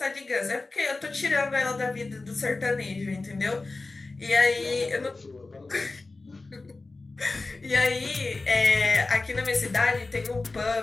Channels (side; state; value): right; quieter; 3.5 dB